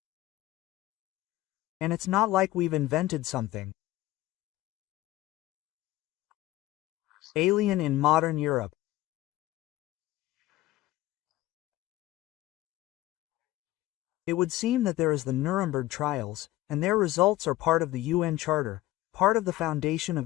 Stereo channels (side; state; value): right; quieter; 16.3 dB